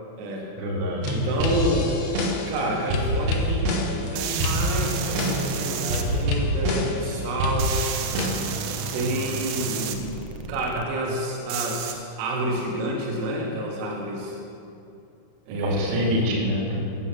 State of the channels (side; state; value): left; late; 37 ms